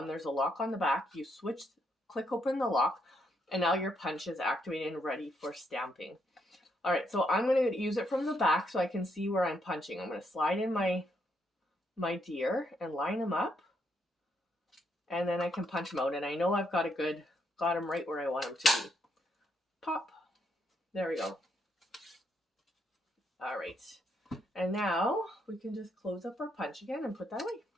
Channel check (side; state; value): both; normal; correlation 0.76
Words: there's a lock on the back. You switch, click open the lock, and now your punch is activated and ready for stamping. All right, so I'm going to use it from the back so I can see where I'm punching. I'm going to slide in my deer and line them up, and then I can punch them out. And I know I've got them right where I want them to be. Pop. There we go. All right. And now we can just close up our punch again and put that away.